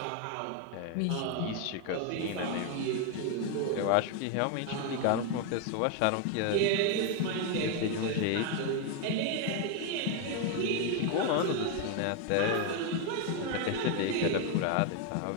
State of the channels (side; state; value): both; different; correlation 0.01